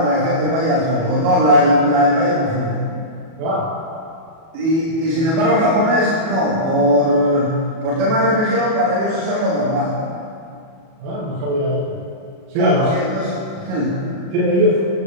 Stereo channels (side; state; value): left; late; 37 ms